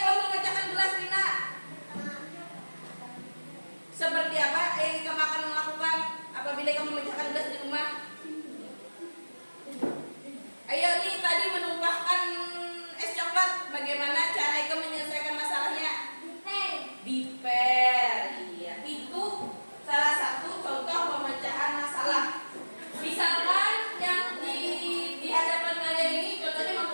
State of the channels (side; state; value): both; inverted; correlation -1.00